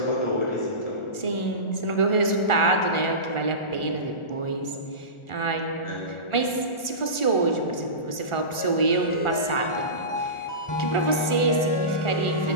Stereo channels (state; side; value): late; right; 1.4 ms